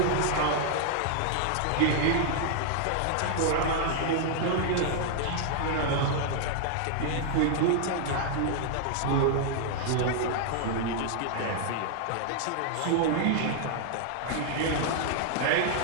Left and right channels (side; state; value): both; different; correlation 0.00